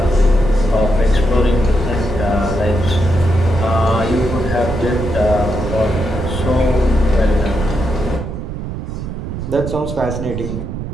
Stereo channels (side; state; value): right; noise; rumble, 6 dB below the sound